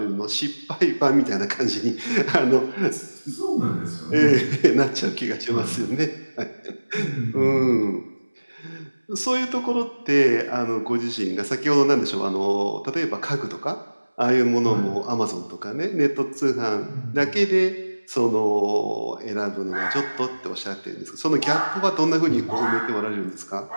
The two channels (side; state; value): both; inverted; correlation -1.00